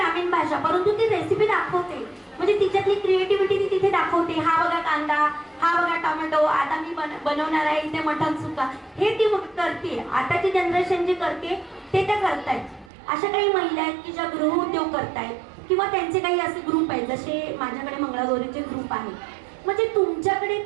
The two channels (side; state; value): left; drops out; at 12.9 s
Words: भाषा, परंतु ती रेसिपी दाखवते. म्हणजे तिच्यातली क्रिएटिव्हिटी ती तिथे दाखवते. हा बघा कांदा, हा बघा टोमॅटो, आता मी बनवणार आहे इथे मटण सुका, हे ती करते. आताची जनरेशन जे करते ते त्या करतायत. अशा काही महिला आहेत की ज्या गृहउद्योग करतायत किंवा त्यांचे काही असे ग्रुप आहेत, जसे माझ्याकडे मंगळागौरीचे ग्रुप आहेत. म्हणजे तुमच्याकडे